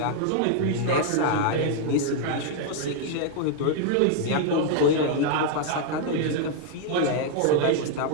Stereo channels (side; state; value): both; different; correlation 0.00